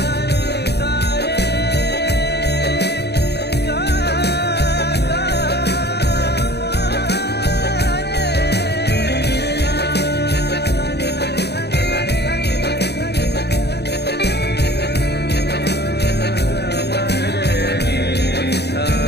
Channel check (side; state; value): right; late; 0.48 ms